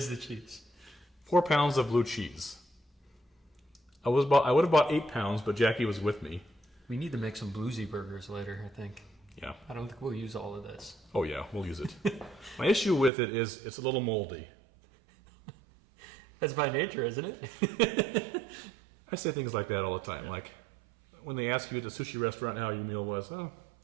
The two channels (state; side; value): drops out; left; at 13.1 s